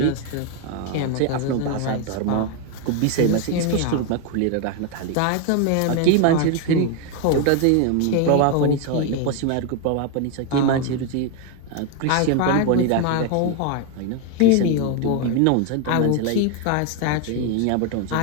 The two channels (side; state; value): both; different; correlation 0.01